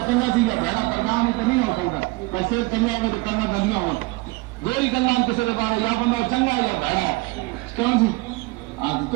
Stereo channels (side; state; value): left; quieter; 23.1 dB